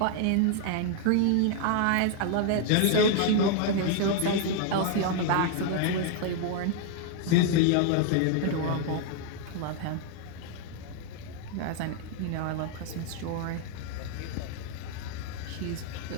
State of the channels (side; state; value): both; different; correlation 0.00